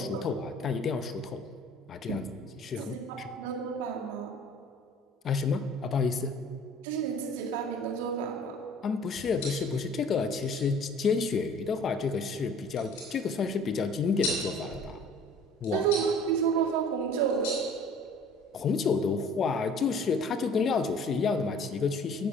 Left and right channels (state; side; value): normal; both; correlation 0.50